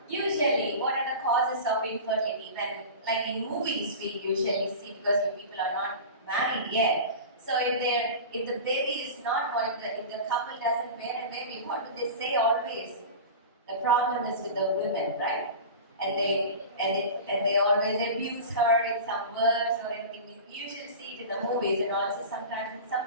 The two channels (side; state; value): both; inverted; correlation -0.32